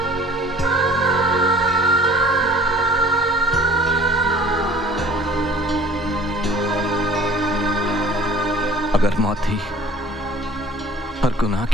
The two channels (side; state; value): both; normal; correlation 0.49